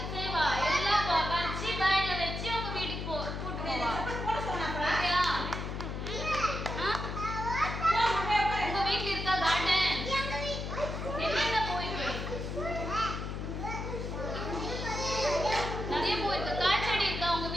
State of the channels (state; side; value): noise; left; hum, 5 dB below the sound